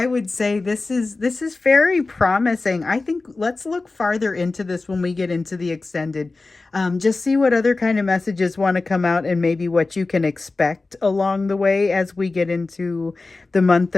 would say this is very promising. I think let's look farther into this when we get into the extended. Just see what other kind of messages want to come out, and maybe what you can expect along the way as we get into the month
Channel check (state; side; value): quieter; right; 3.5 dB